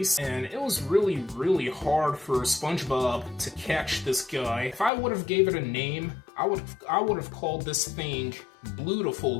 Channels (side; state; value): right; drops out; at 4.9 s